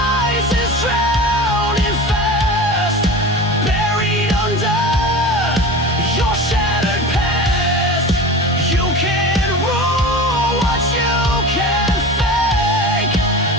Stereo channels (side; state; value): both; normal; correlation 0.32